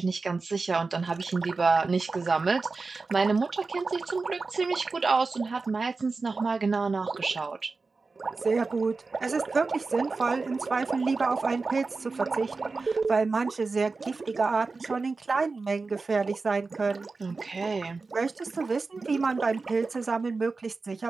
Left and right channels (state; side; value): quieter; left; 4.0 dB